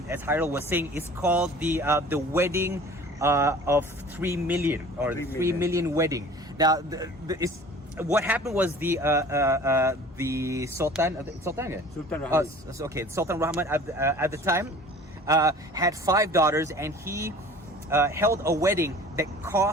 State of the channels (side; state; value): both; normal; correlation 0.45